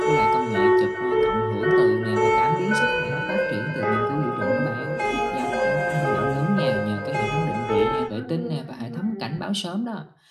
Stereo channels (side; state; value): both; identical; correlation 1.00